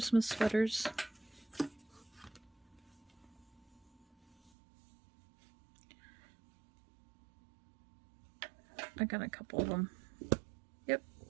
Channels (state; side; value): drops out; left; at 4.5 s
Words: sweaters. I got a couple of them. Yep.